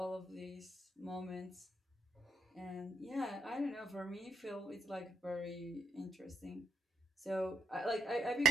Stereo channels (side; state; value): both; normal; correlation 0.78